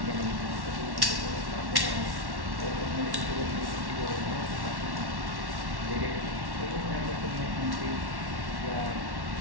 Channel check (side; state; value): left; late; 1.1 ms